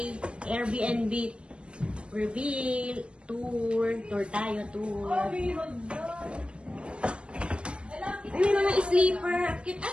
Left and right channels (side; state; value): left; late; 0.058 ms